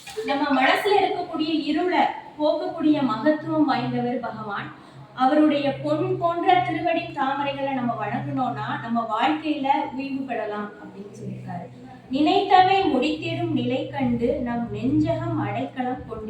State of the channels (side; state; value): both; identical; correlation 1.00